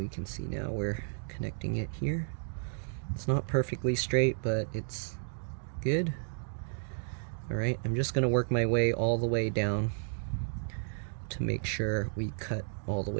can see now we're connecting it here. It's not perfectly straight, but it's good. Alright, I'm just going to work my way all the way down to make sure we cut all the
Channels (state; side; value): silent; left; digital silence